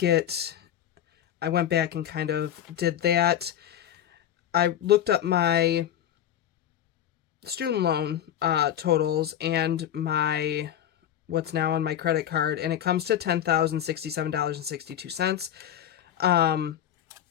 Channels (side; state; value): right; quieter; 10.7 dB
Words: went back and kind of did that. I looked up my student loan totals and what's now on my credit card, and it comes to $10,067.62.